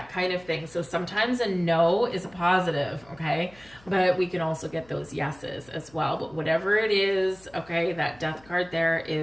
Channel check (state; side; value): noise; left; hum, 26 dB below the sound